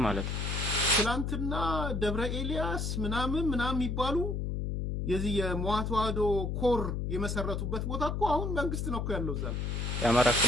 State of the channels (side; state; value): left; noise; hum, 2 dB below the sound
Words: ማለት ነው። ትላንትና ደብረ ኤልያስ ምናምን የሚባሉ የዚህ የመዋ ተዋህዶ ኮር የመሰረቱበት ቦታ እኮ አሁን መንግስት ነው እኮ ያለው እዛ። የአማራ